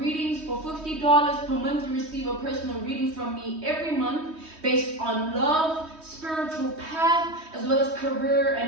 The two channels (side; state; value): left; late; 3.2 ms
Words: for $50 per month. You receive a personal reading from me every month based on love, spiritual path, as well as career